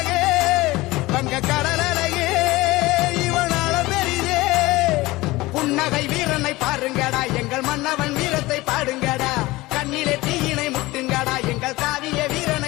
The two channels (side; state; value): right; quieter; 20.0 dB